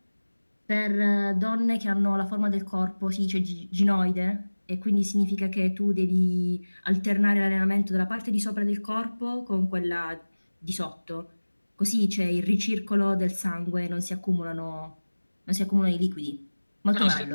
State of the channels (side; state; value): both; inverted; correlation -1.00